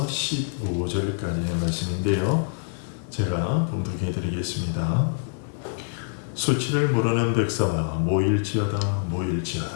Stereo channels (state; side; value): silent; right; digital silence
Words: 15절까지의 말씀인데요. 제가 봉독해 드리겠습니다. 수치를 모르는 백성아 모일지어다